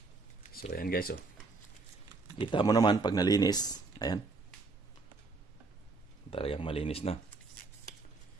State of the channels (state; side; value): quieter; left; 3.8 dB